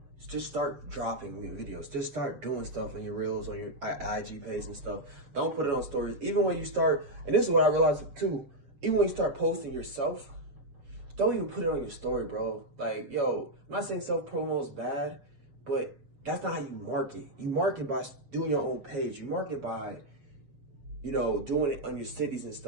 Just start dropping videos. Just start doing stuff on your reels, on your IG page and stuff. Don't put it on stories. Even when you start, and this is what I realized too, even when you start posting yourself, don't even put it on your story, bro. Like, yo, I'm not saying self-promo is bad, but that's not how you market. You market by doing your own page. You market by, you know, doing it on your cities and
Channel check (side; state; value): left; late; 7.3 ms